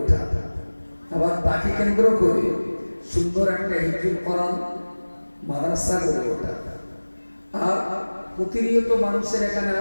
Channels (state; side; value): inverted; both; correlation -1.00